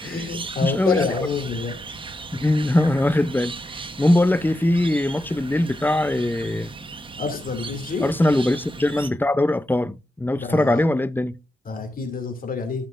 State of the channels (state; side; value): normal; both; correlation 0.88